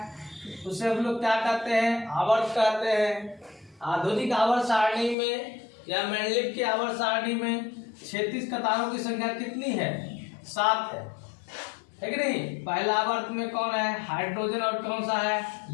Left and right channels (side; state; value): right; drops out; at 5.2 s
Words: उसे हम लोग क्या कहते हैं? आवर्त कहते हैं। आधुनिक आवर्त सारणी में या मेंडलीव की आवर्त सारणी में क्षैतिज कतारों की संख्या कितनी है? 7 है कि नहीं? पहला आवर्त में कौन है? हाइड्रोजन। और कौन सा है?